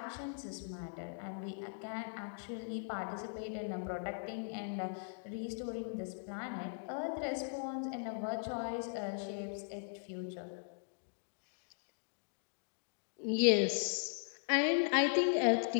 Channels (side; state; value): right; silent; digital silence